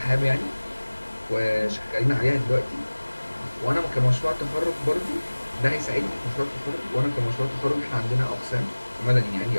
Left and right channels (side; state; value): both; inverted; correlation -1.00